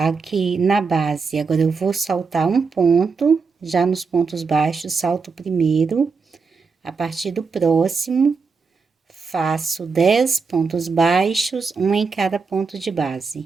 na base, agora eu vou saltar um ponto, já nos pontos baixos, salto o primeiro, a partir do próximo, faço 10 pontos baixos, um em cada ponto de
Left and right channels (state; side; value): quieter; left; 4.9 dB